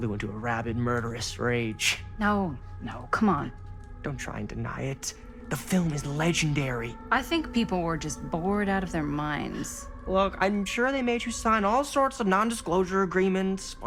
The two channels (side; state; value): both; identical; correlation 1.00